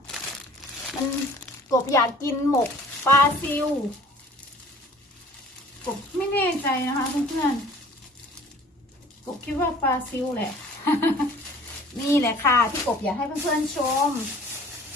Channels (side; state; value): both; normal; correlation 0.49